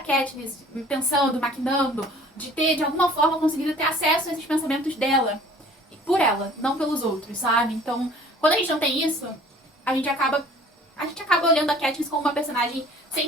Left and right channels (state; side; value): normal; both; correlation 0.51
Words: pensando, maquinando, de ter, de alguma forma, conseguido ter acesso a esses pensamentos dela. Por ela, não pelos outros, sabe? Então, quando a gente não tem isso, a gente acaba olhando a Katniss como uma personagem sem